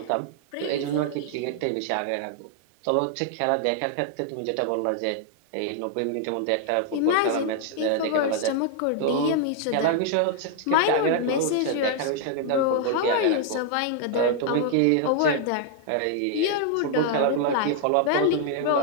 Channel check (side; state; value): both; different; correlation 0.00